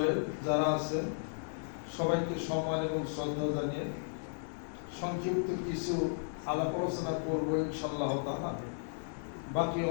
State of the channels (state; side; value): silent; right; 55 dB below the other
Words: যারা আছেন সবাইকে সম্মান এবং শ্রদ্ধা জানিয়ে সংক্ষিপ্ত কিছু আলাপ আলোচনা করবো ইনশাআল্লাহ তাআলা। বাকি